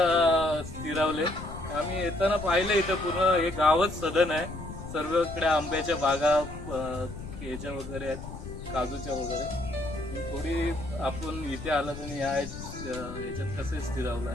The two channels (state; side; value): noise; left; rumble, 11 dB below the sound